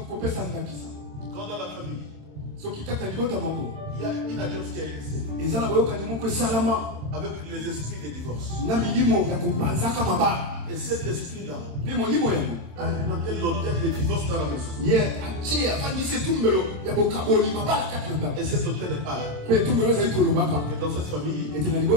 Quand dans la famille, il y a une alliance qui a été scellée avec les esprits des divorces. Et cet esprit-là a alimenté l'autel des divorces dans la maison. Et cet autel est pas là. Et dans cette famille,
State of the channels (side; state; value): left; late; 27 ms